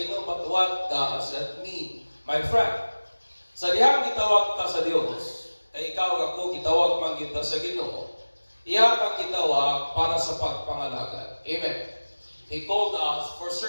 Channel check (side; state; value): both; inverted; correlation -1.00